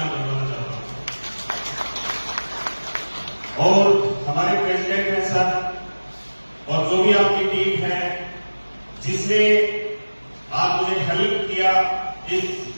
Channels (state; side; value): inverted; both; correlation -1.00